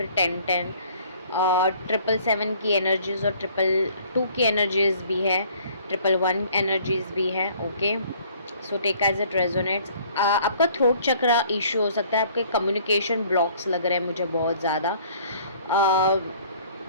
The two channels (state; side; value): inverted; both; correlation -0.56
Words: 10 10 और 777 की एनर्जीज और 222 की एनर्जीज भी है, 111 एनर्जीज भी है। Okay, so take as it resonates. आपका थ्रोट चक्रा इशू हो सकता है, आपके कम्युनिकेशन ब्लॉक्स लग रहे हैं मुझे बहुत ज़्यादा।